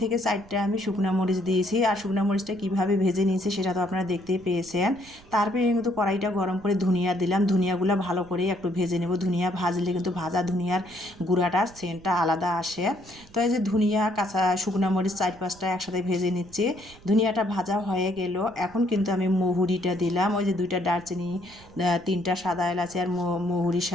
থেকে 4টা আমি শুকনো মরিচ দিয়েছি। আর শুকনো মরিচটা কীভাবে ভেজে নিয়েছি সেটা তো আপনারা দেখতেই পেয়েছেন। তারপরে কিন্তু কড়াইটা গরম করে ধনিয়া দিলাম, ধনিয়াগুলো ভালো করে একটু ভেজে নেব। ধনিয়া ভাজলে কিন্তু ভাজা ধনিয়ার গুঁড়াটার সেন্টটা আলাদা আসে। তো এই যে ধনিয়া কাঁচা শুকনো মরিচ 4-5টা একসাথে ভেজে নিচ্ছি। ধনিয়াটা ভাজা হয়ে গেল, এখন কিন্তু আমি মহুরিটা দিলাম। ওই যে 2টা দারচিনি, 3টা সাদা এলাচি আর মহুরির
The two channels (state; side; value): noise; right; rumble, 23 dB below the sound